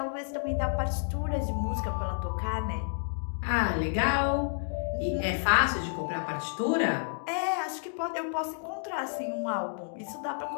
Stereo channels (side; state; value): right; silent; digital silence